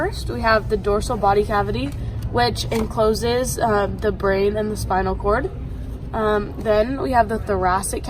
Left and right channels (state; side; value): identical; both; correlation 1.00